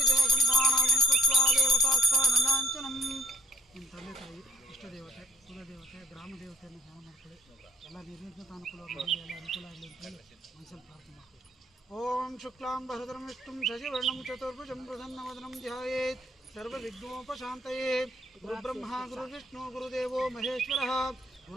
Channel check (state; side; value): normal; both; correlation 0.63